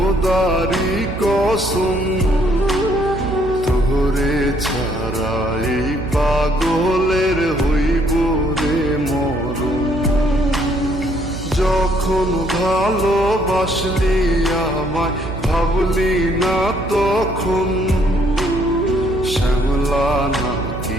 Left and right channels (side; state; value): right; noise; hum, 10 dB below the sound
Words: কসম তোরে ছাড়া এই পাগলের হইব রে মরণ। যখন ভালোবাসলি আমায় ভাবলি না তখন, শ্যামলা